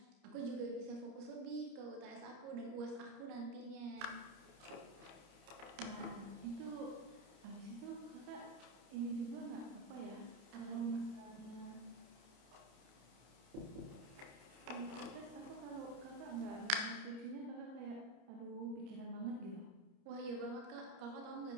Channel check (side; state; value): left; late; 29 ms